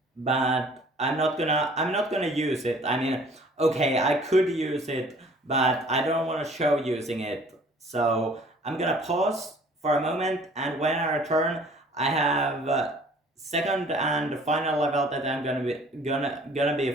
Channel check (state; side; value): normal; both; correlation 0.53